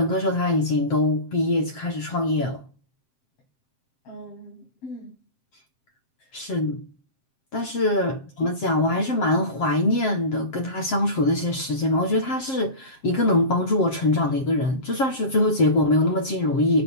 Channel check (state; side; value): late; right; 7.6 ms